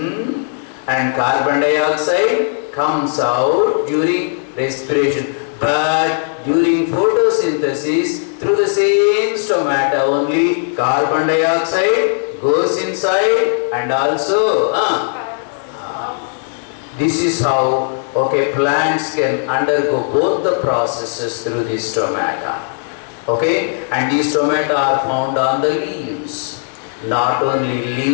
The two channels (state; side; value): silent; right; digital silence